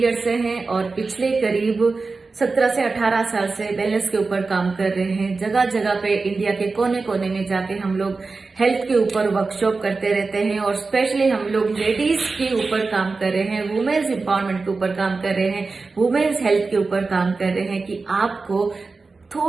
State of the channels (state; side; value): quieter; left; 4.0 dB